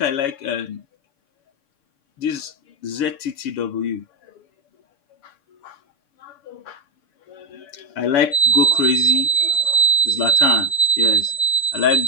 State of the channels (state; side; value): late; right; 7.2 ms